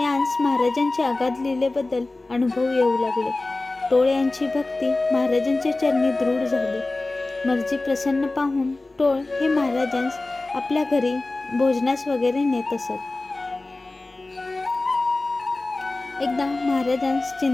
यांस महाराजांचे अगाध लीलेबद्दल अनुभव येऊ लागले. टोळ यांची भक्ती महाराजांच्या चरणी दृढ झाली. मर्जी प्रसन्न पाहून टोळ हे महाराजांस आपल्या घरी भोजनास वगैरे नेत असत. एकदा महाराजांस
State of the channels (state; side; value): quieter; right; 3.1 dB